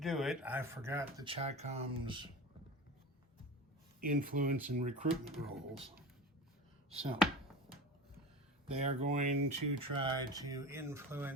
it, I forgot the Chi-Com's influence and recruitment roles. So, they are going to try to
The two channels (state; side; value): normal; both; correlation 0.31